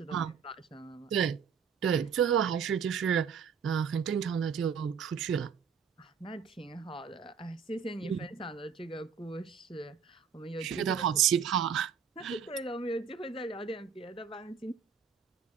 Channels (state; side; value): quieter; left; 7.0 dB